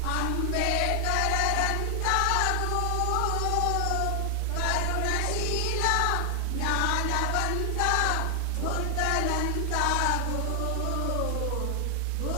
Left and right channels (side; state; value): both; different; correlation 0.00